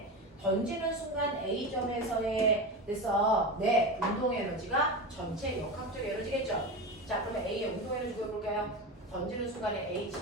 던지는 순간 A점에서의 됐어. 네, 운동 에너지가 전체 역학적 에너지겠죠. 자, 그러면 A의 운동 에너지 구해볼까요? 던지는 순간에 A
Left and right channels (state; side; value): normal; both; correlation 0.23